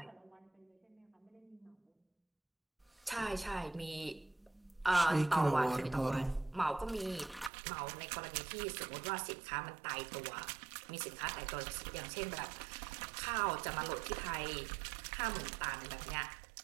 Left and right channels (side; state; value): left; drops out; at 7.5 s